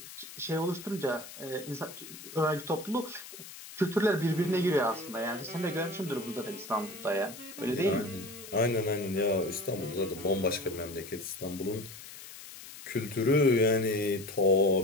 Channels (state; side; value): noise; left; hiss, 14 dB below the sound